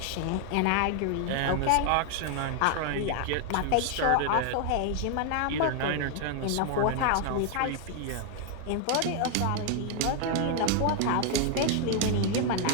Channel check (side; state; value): both; different; correlation 0.00